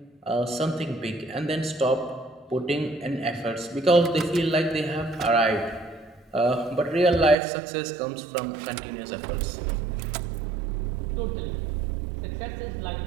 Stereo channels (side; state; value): left; drops out; at 7.4 s